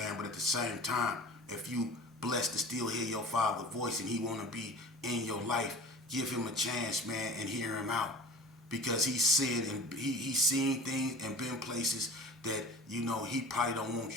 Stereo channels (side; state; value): both; normal; correlation 0.40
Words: but at the same time, if you blessed to still hear your father's voice and he want to be in your life, give him a chance, man, and hear him out, because he's seen things and been places that he probably don't